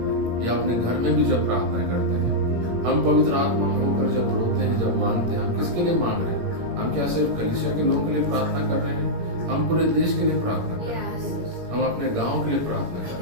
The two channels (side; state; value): left; late; 17 ms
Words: या अपने घर में भी जब प्रार्थनाएं करते हैं, हम पवित्र आत्मा में होकर जब रोते हैं, जब मांगते हैं, हम किसके लिए मांग रहे हैं? हम क्या सिर्फ कलीसिया के लोगों के लिए प्रार्थना कर रहे हैं? हम पूरे देश के लिए प्रार्थना कर रहे हैं, हम अपने गाँव के लिए प्रार्थना कर